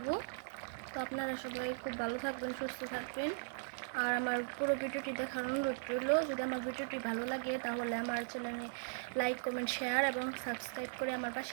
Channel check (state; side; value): silent; left; 52 dB below the other